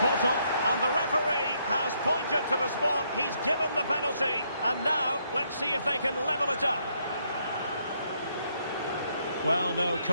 on. And the referee has pointed to the spot. He's given the penalty. And now, let's see if they can level it up. Well, no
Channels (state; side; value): inverted; both; correlation -0.73